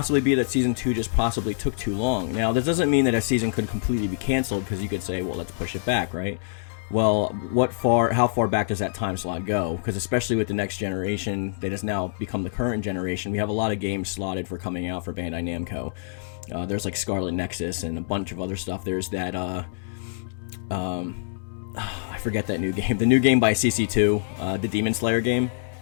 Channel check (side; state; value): right; silent; digital silence